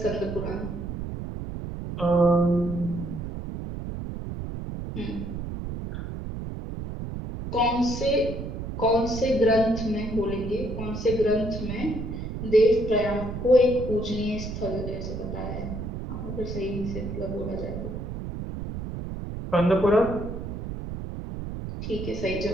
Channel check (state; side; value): noise; right; rumble, 6 dB below the sound